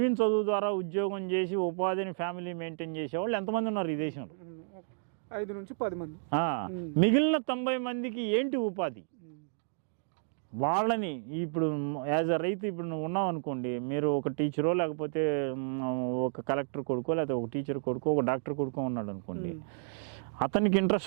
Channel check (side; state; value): left; silent; digital silence